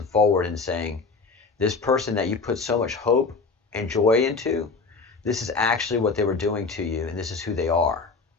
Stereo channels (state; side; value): quieter; right; 4.3 dB